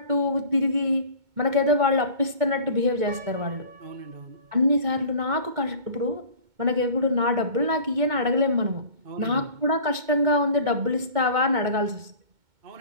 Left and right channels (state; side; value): late; left; 2.2 ms